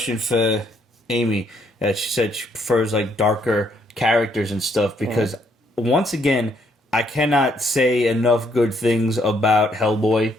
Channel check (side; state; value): both; normal; correlation 0.70